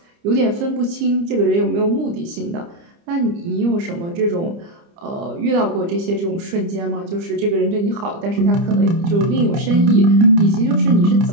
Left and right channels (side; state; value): left; late; 29 ms